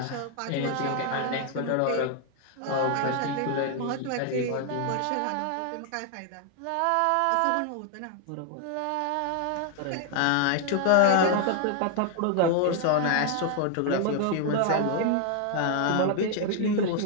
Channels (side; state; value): both; different; correlation 0.00